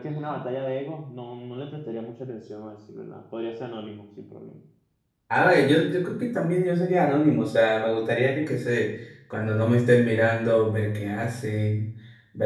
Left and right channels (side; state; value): both; identical; correlation 1.00